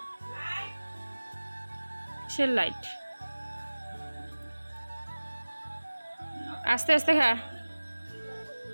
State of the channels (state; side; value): inverted; both; correlation -1.00